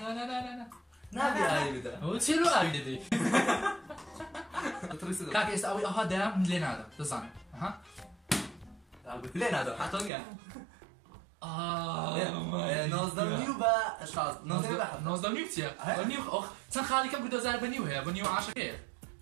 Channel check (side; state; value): left; drops out; at 10.1 s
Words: لا نبي آي بدا هو تشيلو آي دي كاك يستوي أها دام لين هذا تزان ها لين هذا حتوني نوزدم نيو با شاز نوزدم نيو تيا نيو أخ سن خالي كم قدو زار بنيو هي بنيو عاشر كيف